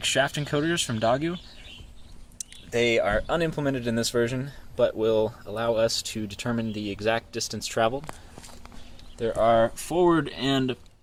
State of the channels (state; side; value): identical; both; correlation 1.00